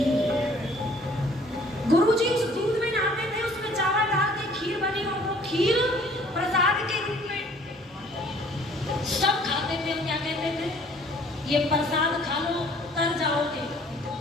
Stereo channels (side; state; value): both; normal; correlation 0.56